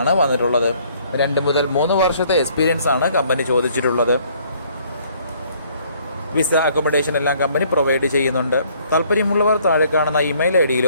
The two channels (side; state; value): both; inverted; correlation -0.62